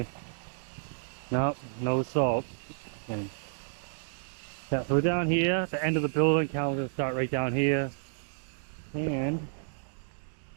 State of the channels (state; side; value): silent; left; digital silence